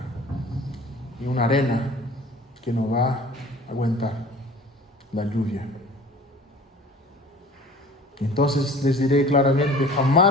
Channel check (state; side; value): normal; both; correlation 0.45